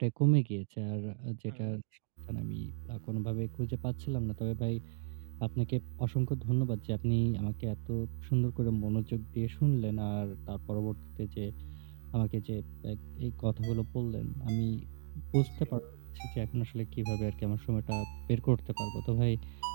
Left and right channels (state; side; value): silent; left; digital silence